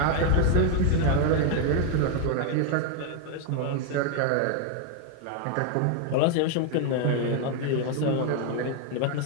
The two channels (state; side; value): different; both; correlation 0.01